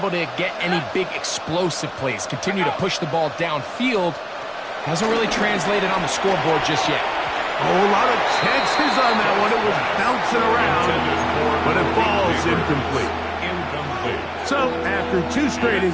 to get any big explosive plays, continue to push the ball downfield, hasn't really translated on the scoreboard just yet. A whole lot of chances on that one. It was bouncing around, but it falls incomplete. So, after 2 straight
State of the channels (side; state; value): both; identical; correlation 1.00